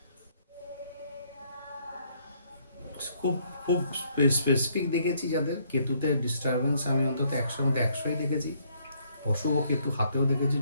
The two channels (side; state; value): both; inverted; correlation -0.69